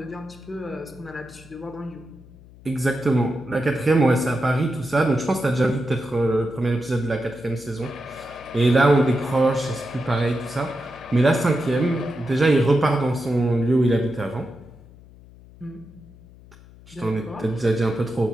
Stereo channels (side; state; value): left; noise; hum, 22 dB below the sound